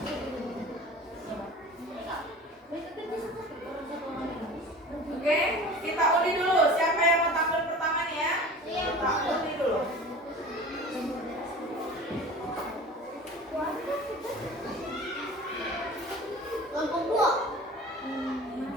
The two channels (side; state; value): both; normal; correlation 0.39